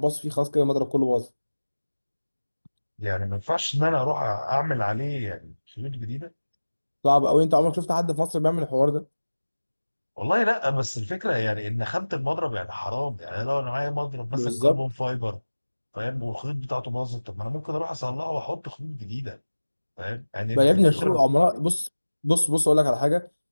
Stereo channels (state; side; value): inverted; both; correlation -1.00